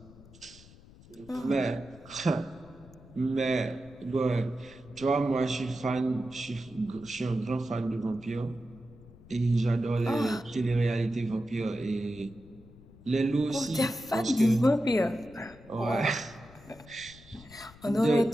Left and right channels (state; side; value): noise; left; rumble, 22 dB below the sound